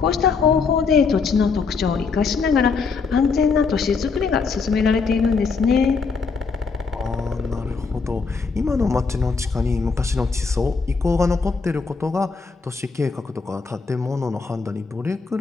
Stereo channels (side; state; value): right; quieter; 4.8 dB